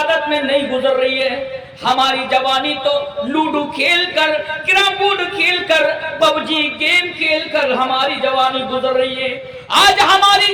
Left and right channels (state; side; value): identical; both; correlation 1.00